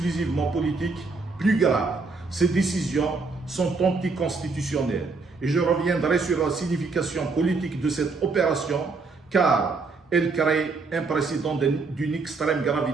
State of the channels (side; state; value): left; quieter; 4.1 dB